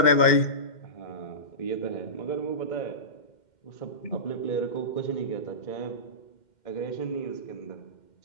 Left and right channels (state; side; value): late; right; 2.1 ms